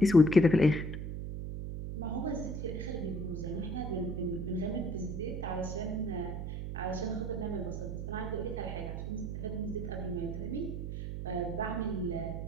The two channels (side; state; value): right; noise; hum, 4 dB below the sound